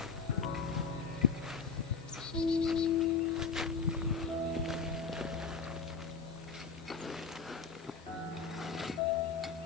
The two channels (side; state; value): right; quieter; 5.2 dB